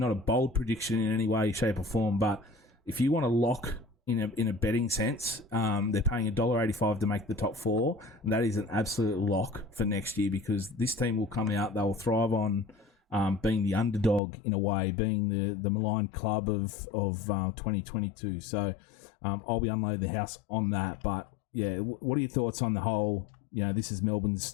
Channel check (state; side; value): drops out; right; at 14.2 s